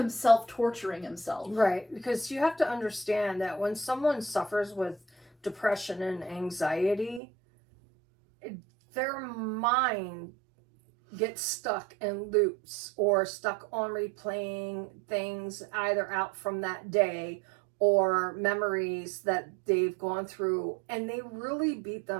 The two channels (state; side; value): drops out; left; at 7.2 s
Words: torturing himself. Right, because you have to understand that when someone suffers with depression and anxiety, their mind get stuck in loops or stuck on replaying things either out from that day or memories that they've gone through, and they really beat